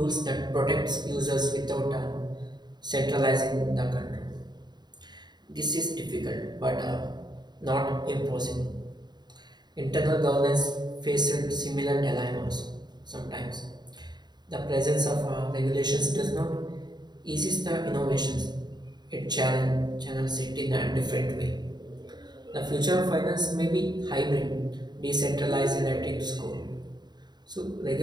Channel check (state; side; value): late; left; 0.21 ms